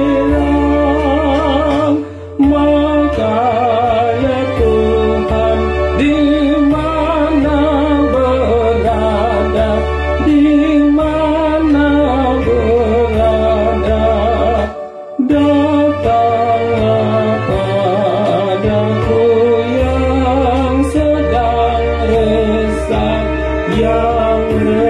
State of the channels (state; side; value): identical; both; correlation 1.00